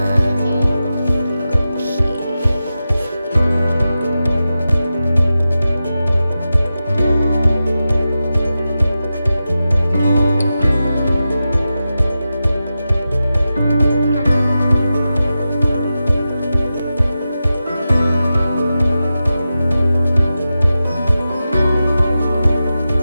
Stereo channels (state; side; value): inverted; both; correlation -0.92